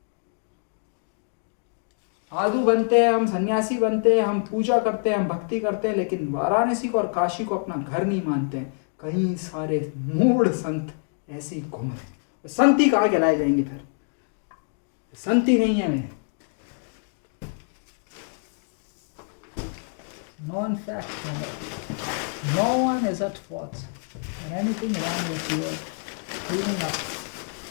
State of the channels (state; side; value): silent; right; 60 dB below the other